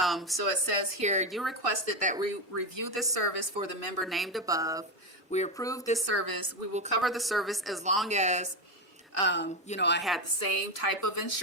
so it says here, you requested that we review this service for the member named above. We approved this service. We will cover the service as long as, I had the same type of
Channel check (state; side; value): normal; both; correlation 0.12